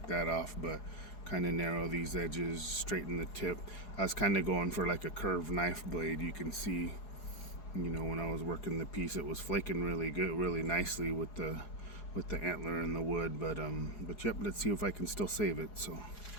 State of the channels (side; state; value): right; late; 4.8 ms